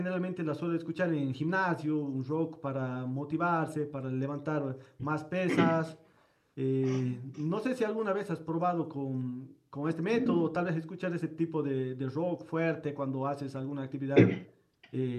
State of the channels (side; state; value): both; identical; correlation 1.00